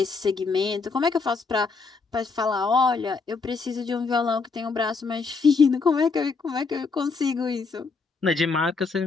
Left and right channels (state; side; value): quieter; right; 4.5 dB